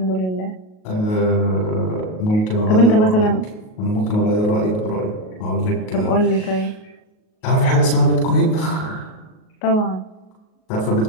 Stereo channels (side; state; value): right; late; 38 ms